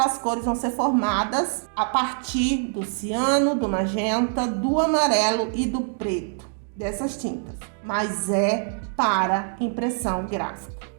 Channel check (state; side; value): silent; left; 62 dB below the other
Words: cores vão ser formadas a partir do ciano, do magenta, do amarelo e do preto, dessas tintas. Mas é para impressão gráfica.